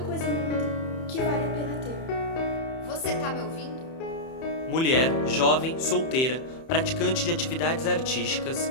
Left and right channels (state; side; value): late; right; 31 ms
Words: no mundo que vale a pena ter. Você tá me ouvindo? Mulher, jovem, solteira, praticante de atividades artísticas